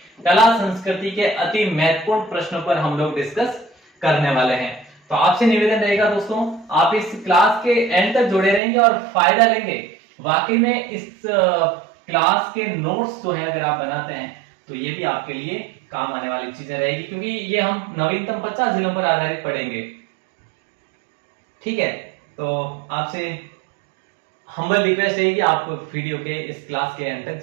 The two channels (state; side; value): drops out; left; at 8.6 s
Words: कला संस्कृति के अति महत्वपूर्ण प्रश्नों पर हम लोग डिस्कस करने वाले हैं। तो आपसे निवेदन रहेगा दोस्तों, आप इस क्लास के एंड तक जुड़े रहेंगे और फायदा लेंगे। वाकई में इस क्लास के नोट्स जो है अगर आप बनाते हैं तो ये भी आपके लिए काम आने वाली चीजें रहेगी, क्योंकि ये हम नवीनतम 50 जिलों पर आधारित पढ़ेंगे। ठीक है, तो आपसे हम्बल रिक्वेस्ट है कि आप वीडियो के इस क्लास के एंड तक